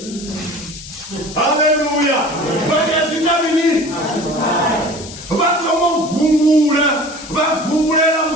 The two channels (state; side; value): noise; left; hiss, 14 dB below the sound